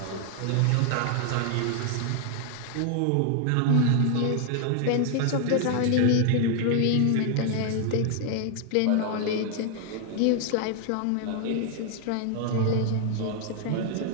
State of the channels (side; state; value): both; different; correlation 0.00